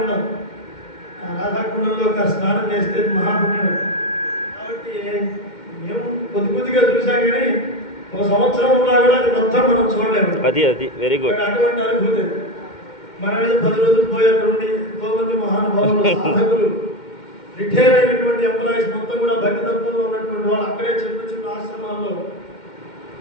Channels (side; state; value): right; late; 2.1 ms